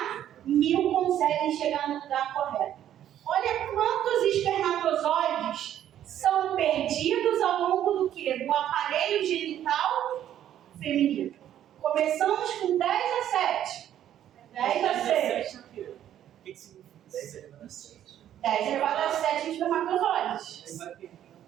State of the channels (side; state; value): left; quieter; 11.1 dB